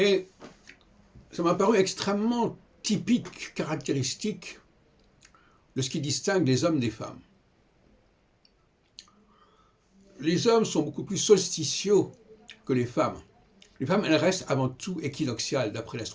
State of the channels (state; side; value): identical; both; correlation 1.00